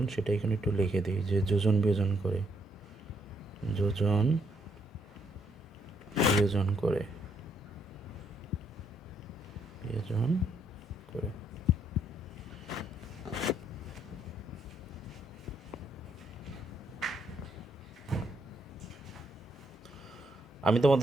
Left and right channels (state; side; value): normal; both; correlation 0.73